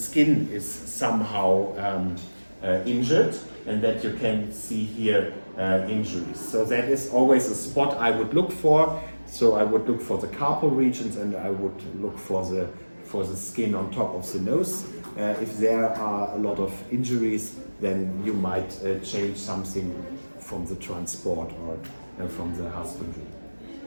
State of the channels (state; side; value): inverted; both; correlation -1.00